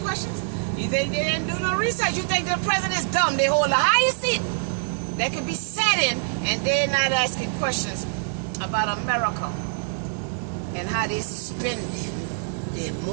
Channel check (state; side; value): silent; left; 62 dB below the other